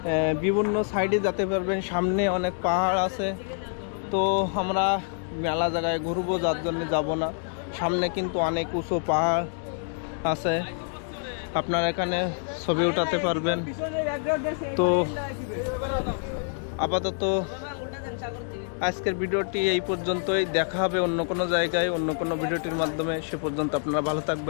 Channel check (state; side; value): silent; right; 60 dB below the other